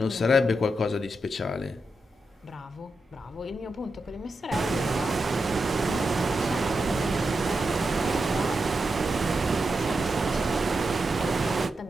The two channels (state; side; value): normal; both; correlation 0.87